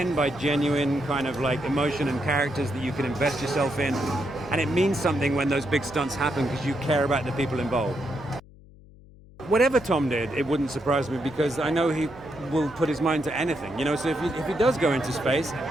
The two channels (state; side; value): noise; left; hum, 23 dB below the sound